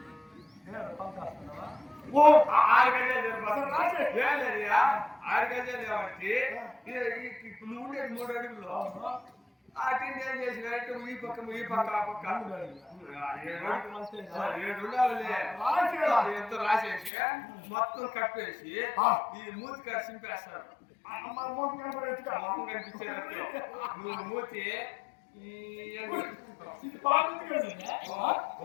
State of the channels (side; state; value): right; drops out; at 17.1 s